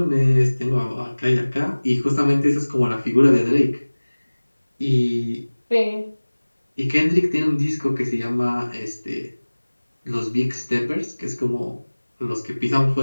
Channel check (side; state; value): both; inverted; correlation -1.00